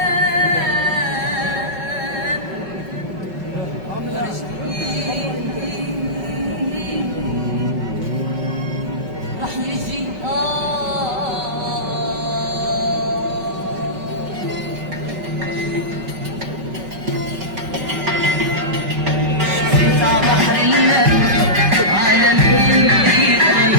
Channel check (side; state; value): left; late; 5.3 ms